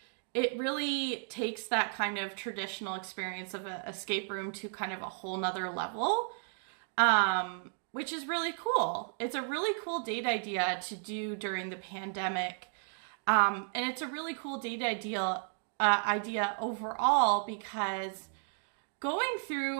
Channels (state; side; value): silent; left; 55 dB below the other